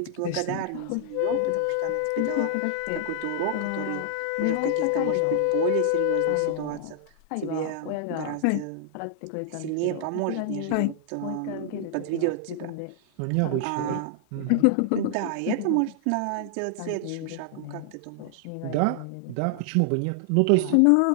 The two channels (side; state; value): both; different; correlation -0.01